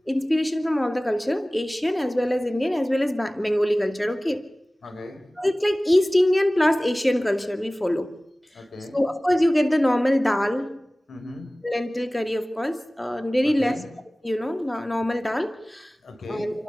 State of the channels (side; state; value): both; normal; correlation 0.98